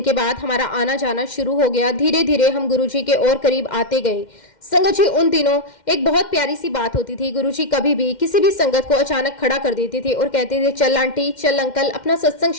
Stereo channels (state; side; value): late; right; 2.1 ms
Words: के बाद हमारा आना जाना शुरू हो गया। धीरे धीरे हम गुरुजी के और करीब आते गए। संगत जी उन दिनों एक बहुत प्यारी सी बात होती थी। गुरुजी कभी भी किसी भी संगत को अचानक खड़ा कर देते थे और कहते थे चल आंटी, चल अंकल, अपना सत्संग